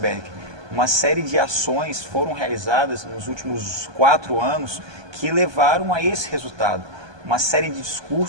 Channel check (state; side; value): late; left; 1.2 ms